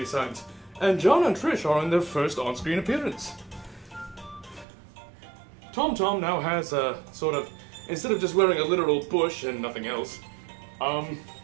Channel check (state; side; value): drops out; left; at 4.7 s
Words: And John and Trish are in their first on-screen appearance. Tom now has a sort of, instead of just wearing a literal bush and nothing else,